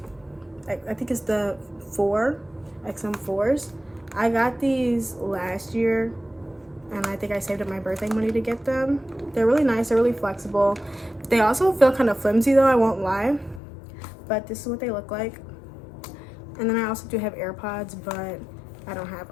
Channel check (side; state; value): right; drops out; at 13.6 s